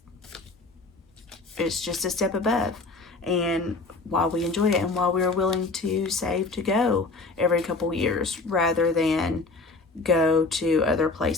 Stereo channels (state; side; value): quieter; right; 3.7 dB